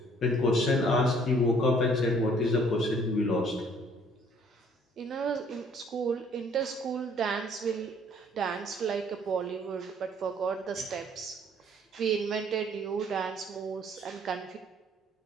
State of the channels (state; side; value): normal; both; correlation 0.59